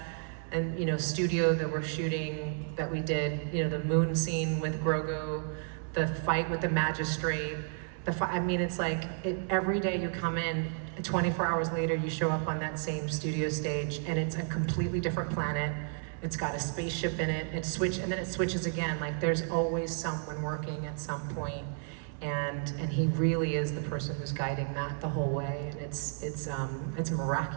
and, studio that we're shooting, that we did, the moon scene with Grogu, the fight with the magistrate, it's like, every day you come in, 24 hours later, you show up on that same studio stage, and it's a completely different planet. It's got a spaceship in it. And then it switches again. Like, there's always someone working at some point, and he really is the person who's guiding that the whole way. And it's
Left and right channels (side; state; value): left; silent; 56 dB below the other